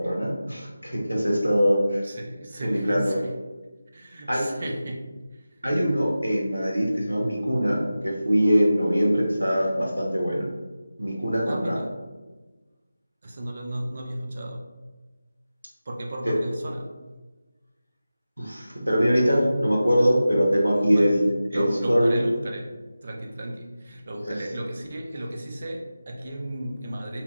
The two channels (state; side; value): inverted; both; correlation -0.95